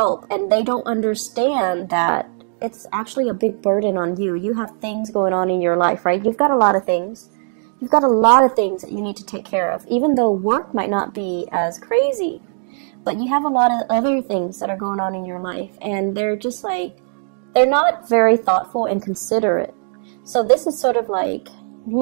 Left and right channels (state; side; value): silent; left; digital silence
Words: and they don't understand that it's actually a big burden on you. You have things going on in your life, right? You've got a lot of things. You've got a lot of things that you need to take care of, even though work might not be as crazy. But you have a lot of other things that are going on in your life, and they're just like, they're not very thoughtful and considerate. So this is sort of like